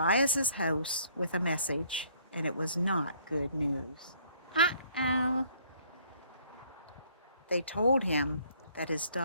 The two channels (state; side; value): inverted; both; correlation -0.62